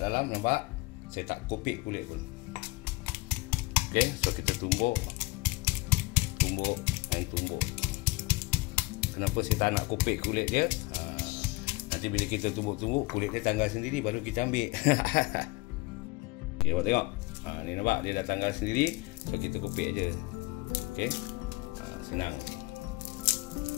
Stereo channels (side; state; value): right; quieter; 22.7 dB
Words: dalam, nampak saya tak kopek kulit pun. Okey, so kita tumbuk. Kenapa saya tak nak kopek kulit dia? Nanti bila kita tumbuk-tumbuk, kulit dia tanggal sendiri, baru kita ambil. Okey, awak tengok. Ni nampak dia dah tanggal sendiri, so kita kopek aja. Okey, senang.